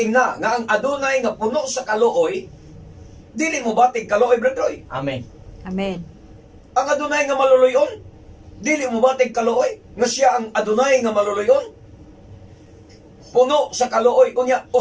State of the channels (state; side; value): identical; both; correlation 1.00